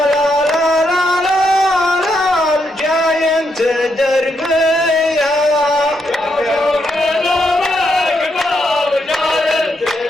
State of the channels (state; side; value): normal; both; correlation 0.79